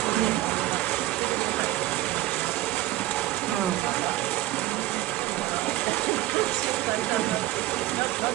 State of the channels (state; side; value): quieter; left; 16.0 dB